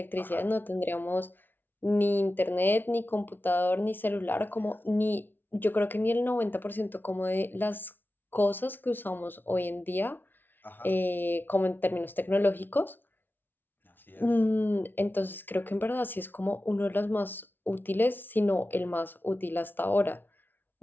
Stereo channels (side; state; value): right; late; 0.095 ms